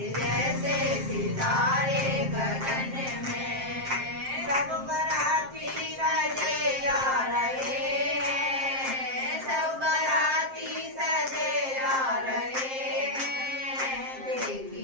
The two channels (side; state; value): left; late; 7.6 ms